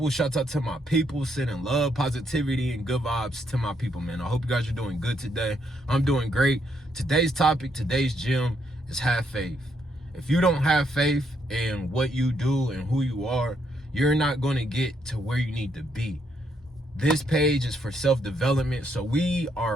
Shout out to my people. Sending love, positivity, and good vibes to my people, man. I hope you guys are doing good today. I'm doing great. Today's topic, today's gem is have faith. If you don't have faith in what you do and who you are, you're not going to get to where you need to be. This page is for self-development, so we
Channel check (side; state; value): both; normal; correlation 0.75